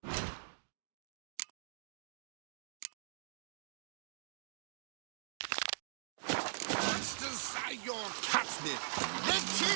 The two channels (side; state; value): left; silent; digital silence